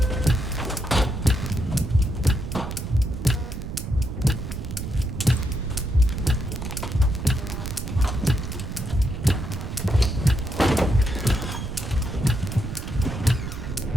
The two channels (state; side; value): noise; right; rumble, 6 dB below the sound